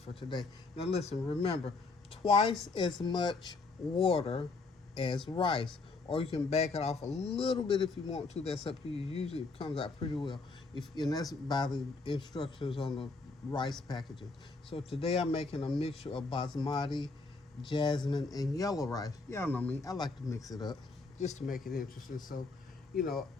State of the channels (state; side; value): quieter; right; 3.9 dB